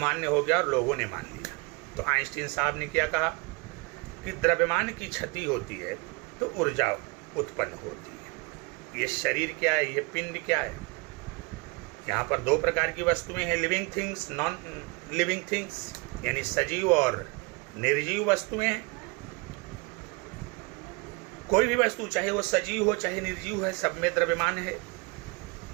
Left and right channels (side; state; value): left; quieter; 29.0 dB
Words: हो गया और लोगों ने मान लिया। तो आइंस्टीन साहब ने क्या कहा कि द्रव्यमान की क्षति होती है तो ऊर्जा उत्पन्न होती है। ये शरीर क्या है, ये पिंड क्या है? यहाँ पर दो प्रकार की वस्तुएं हैं, living things, non living things. यानी सजीव और निर्जीव वस्तुएं। कोई भी वस्तु चाहे वो सजीव हो चाहे निर्जीव है, सब में द्रव्यमान है।